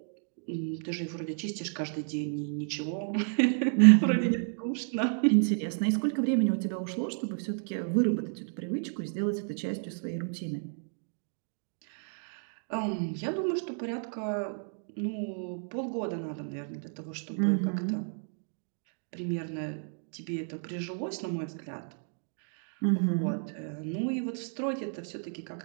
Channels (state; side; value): silent; left; 57 dB below the other